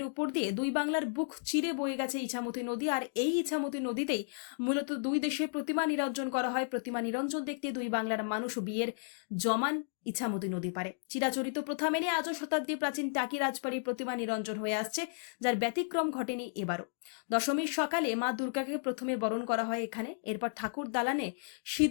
উপর দিয়ে দুই বাংলার বুক চিরে বয়ে গেছে ইছামতি নদী। আর এই ইছামতি নদীতেই মূলত দুই দেশের প্রতিমা নিরঞ্জন করা হয়। প্রতিমা নিরঞ্জন দেখতে দুই বাংলার মানুষ বিয়ের জমান ইছামতি নদী পারে। চিরাচরিত প্রথা মেনে আজও শতাব্দী প্রাচীন টাকি রাজবাড়ির প্রতিমা নিরঞ্জন হয়ে আসছে, যার ব্যতিক্রম ঘটেনি এবারও। দশমীর সকালে মা দুর্গাকে প্রথমে বরণ করা হয় এখানে। এরপর ঠাকুর দালানে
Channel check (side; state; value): right; silent; digital silence